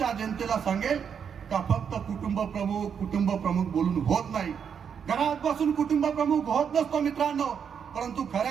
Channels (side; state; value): left; quieter; 7.3 dB